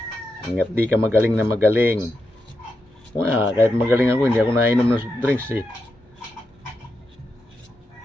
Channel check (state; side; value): normal; both; correlation 0.86